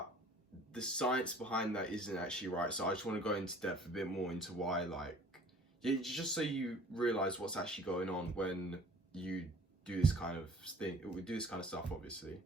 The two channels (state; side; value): normal; both; correlation 0.50